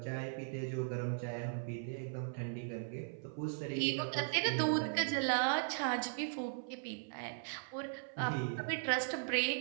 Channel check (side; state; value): left; silent; 52 dB below the other